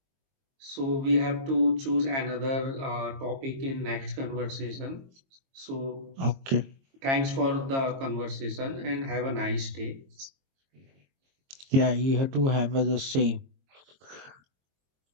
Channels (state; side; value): late; left; 22 ms